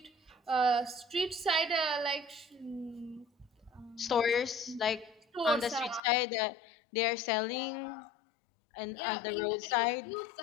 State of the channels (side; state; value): right; drops out; at 6.0 s